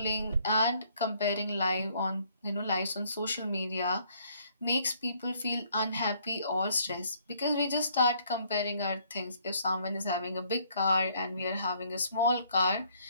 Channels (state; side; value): inverted; both; correlation -0.65